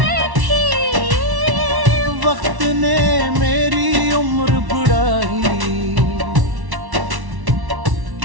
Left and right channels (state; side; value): late; left; 1.1 ms